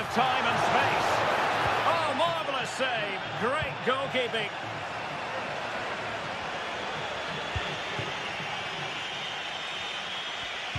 of time and space. Oh, marvellous save. Great goalkeeping.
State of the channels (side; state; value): both; identical; correlation 1.00